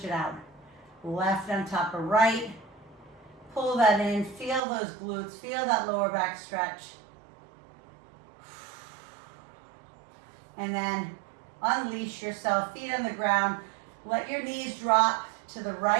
it out. Left on top of right. Pull that in, feel those glutes, feel that lower back stretch. And then unleash yourself, feet on the ground. Let your knees drop to the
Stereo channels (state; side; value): drops out; left; at 4.6 s